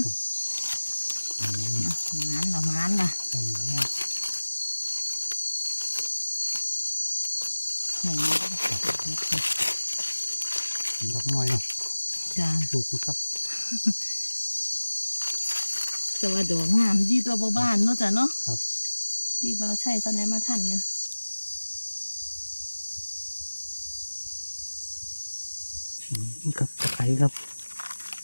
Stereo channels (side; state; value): both; inverted; correlation -1.00